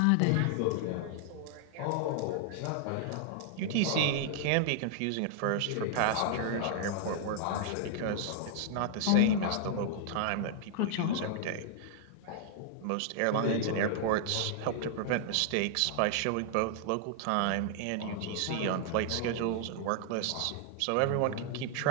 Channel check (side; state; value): both; different; correlation -0.01